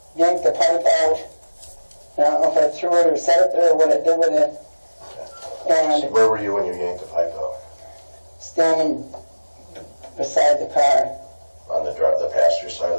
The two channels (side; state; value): both; inverted; correlation -1.00